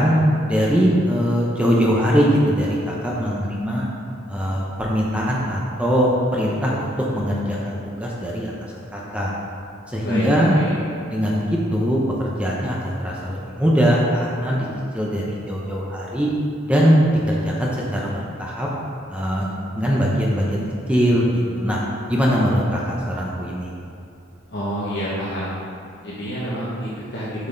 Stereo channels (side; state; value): both; normal; correlation 0.76